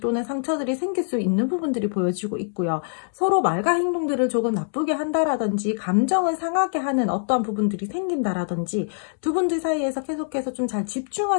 상처들이 생길 수 있는 부분들이 보여지고 있고요. 서로 말과 행동들을 조금 나쁘게 한다라든지 감정을 상하게 하는 어떠한 부분들이 생긴다라든지 두 분들 사이에서 계속해서 좀 잘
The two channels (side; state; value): right; silent; digital silence